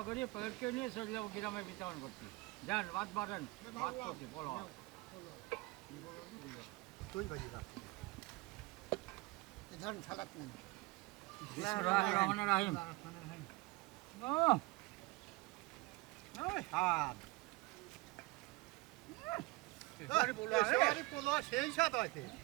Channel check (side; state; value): left; quieter; 23.1 dB